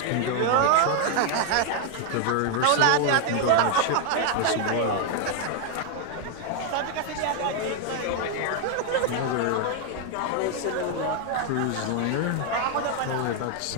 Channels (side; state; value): both; different; correlation 0.00